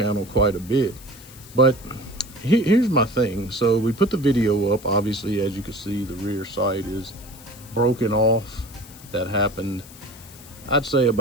quite a bit. But here's my thing. So we put the video up. Obviously, as you can see, the rear sight is broken off. That happened, I'd say,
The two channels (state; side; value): noise; left; hiss, 20 dB below the sound